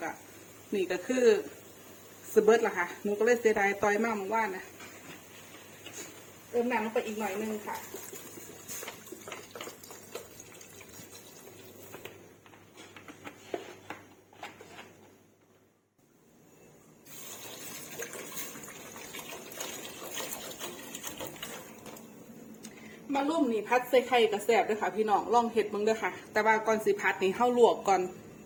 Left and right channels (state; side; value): identical; both; correlation 1.00